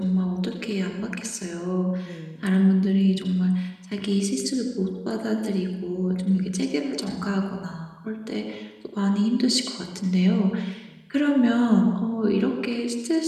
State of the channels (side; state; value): both; identical; correlation 1.00